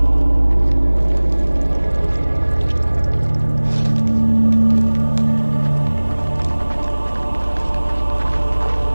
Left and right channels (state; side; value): inverted; both; correlation -1.00